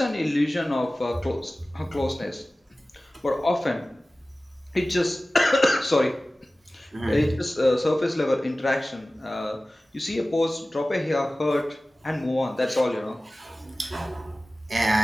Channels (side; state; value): both; normal; correlation 0.97